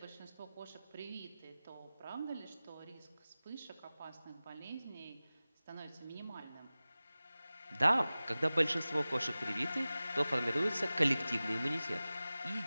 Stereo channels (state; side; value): inverted; both; correlation -0.97